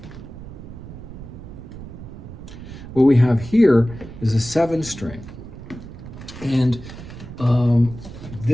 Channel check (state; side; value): noise; right; rumble, 13 dB below the sound